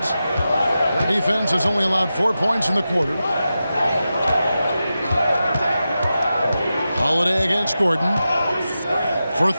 Their defense has only allowed 4 points in the quarter. Holiday against Gordon. For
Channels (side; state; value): both; inverted; correlation -0.92